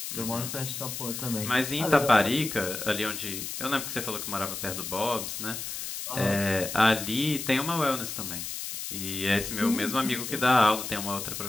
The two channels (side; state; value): left; noise; hiss, 6 dB below the sound